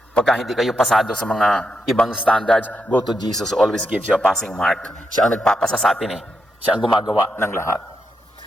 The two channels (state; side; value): normal; both; correlation 0.84